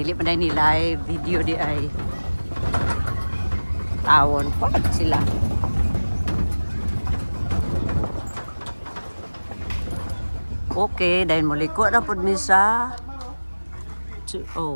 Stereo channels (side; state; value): both; inverted; correlation -1.00